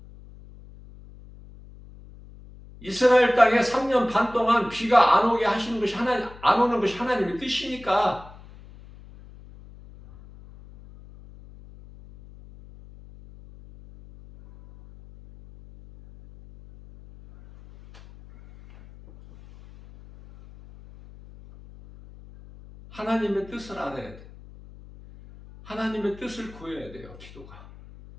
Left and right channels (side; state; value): left; noise; hum, 20 dB below the sound